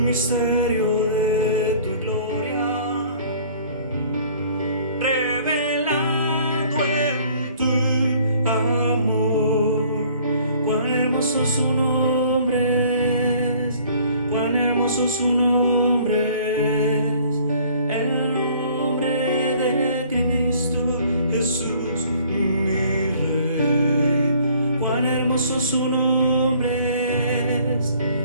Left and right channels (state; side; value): inverted; both; correlation -0.55